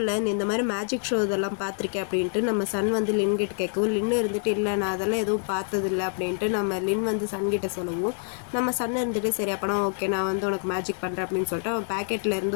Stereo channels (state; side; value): silent; right; 61 dB below the other